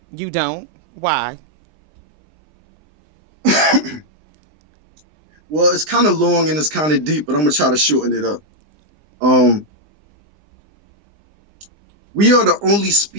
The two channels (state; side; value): late; left; 20 ms